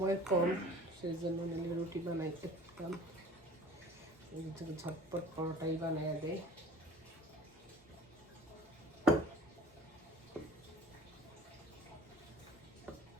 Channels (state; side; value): normal; both; correlation 0.46